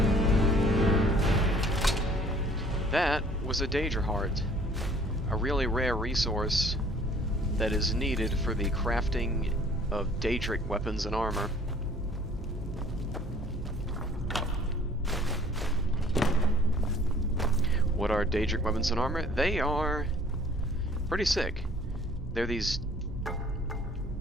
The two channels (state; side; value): normal; both; correlation 0.54